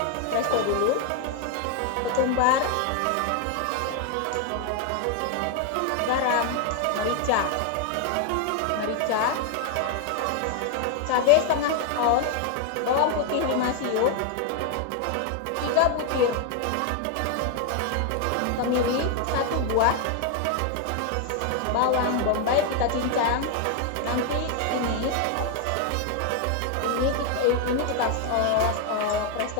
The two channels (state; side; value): different; both; correlation 0.01